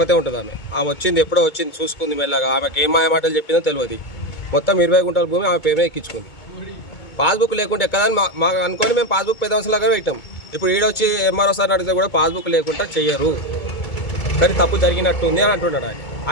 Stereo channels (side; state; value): right; late; 2.2 ms